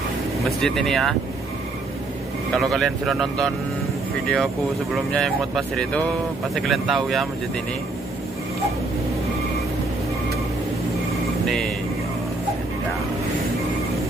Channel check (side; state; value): left; quieter; 3.2 dB